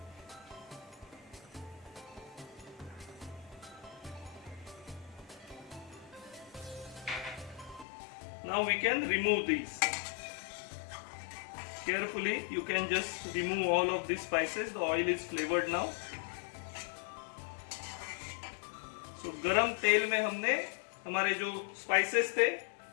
Now we can remove these. Carefully you can just remove all of these spices. The oil is flavored now. So गरम तेल में हमने हमारे जो spices थे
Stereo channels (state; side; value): drops out; right; at 7.9 s